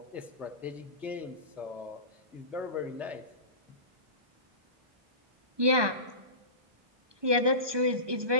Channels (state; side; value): late; left; 1.2 ms